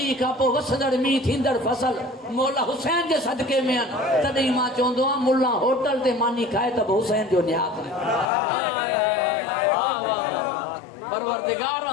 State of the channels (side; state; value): right; drops out; at 8.3 s